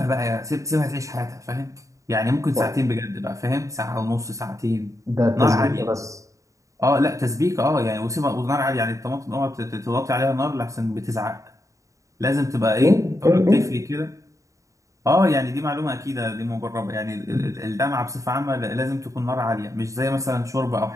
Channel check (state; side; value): late; left; 0.16 ms